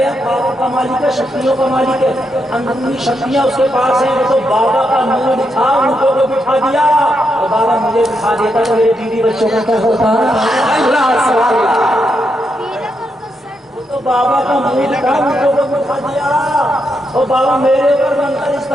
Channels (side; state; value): both; normal; correlation 0.82